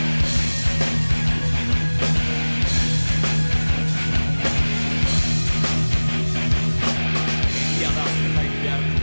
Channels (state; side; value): inverted; both; correlation -1.00